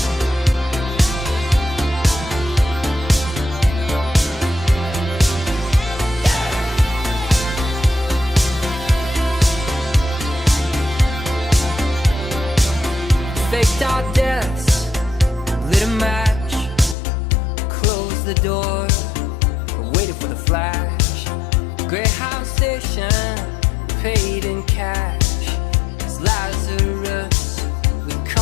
Faked our deaths, lit a match, closed the door, waited for the flash. Greyhound station, paid in cash. It's Lazarus, we're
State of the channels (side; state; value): right; drops out; at 16.9 s